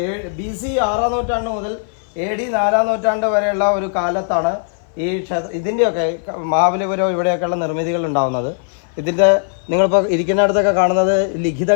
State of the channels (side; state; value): right; silent; 59 dB below the other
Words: BC 6-ാം നൂറ്റാണ്ട് മുതൽ AD 4-ാം നൂറ്റാണ്ട് വരെയുള്ള ഒരു കാലത്താണ് ഈ ഇതിൻ്റെയൊക്കെ മഹാബലിപുരം ഇവിടെയൊക്കെയുള്ള നിർമ്മിതികൾ ഉണ്ടാകുന്നത്. ഇതിൻ്റെ നിങ്ങളിപ്പോൾ ഇരിക്കുന്നിടത്തൊക്കെ കാണുന്നത്